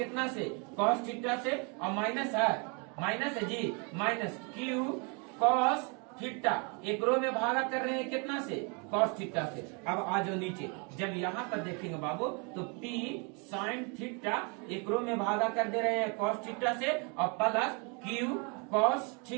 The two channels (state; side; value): quieter; left; 34.0 dB